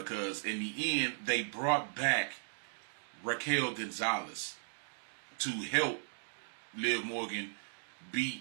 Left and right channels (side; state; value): left; silent; digital silence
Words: in the end they brought back Raquel Gonzalez to help Liv Morgan beat